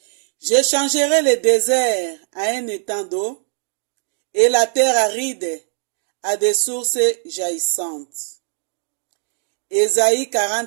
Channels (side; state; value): left; silent; 60 dB below the other